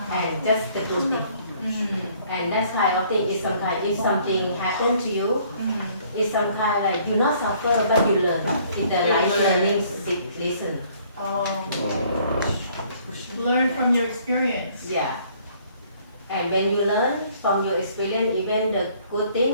and just the good thing. And that's kind of thing is some kind. If something happened to you, it's some kind like you not suffer but you learn. It's the life learning lesson. Oh. Learn from your experience. Yeah. And when you learn from your experience, even the good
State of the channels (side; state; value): both; inverted; correlation -0.61